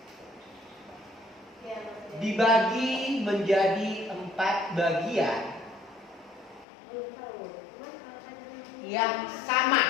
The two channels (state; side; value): drops out; right; at 6.7 s